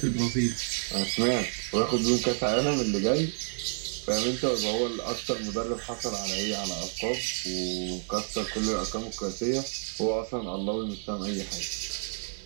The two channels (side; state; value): left; silent; 58 dB below the other